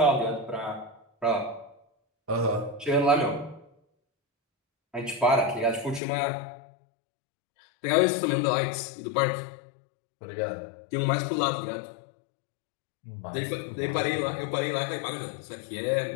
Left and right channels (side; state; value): right; drops out; at 6.0 s